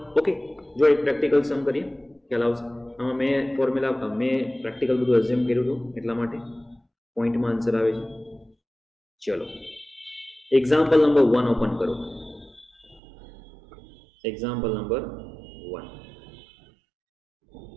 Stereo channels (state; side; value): drops out; left; at 13.0 s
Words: Okay, જો એક પ્રેક્ટિકલ સમ કરીએ ખ્યાલ આવશે. આમાં મેં પ્રેક્ટિકલ બધું એઝ્યુમ કર્યું હતું એટલા માટે પોઈન્ટમાં આન્સર આવે છે. ચલો એક્ઝામ્પલ નંબર 1 ઓપન કરો. Example number 1.